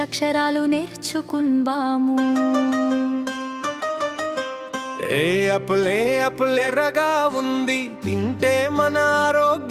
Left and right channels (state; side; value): identical; both; correlation 1.00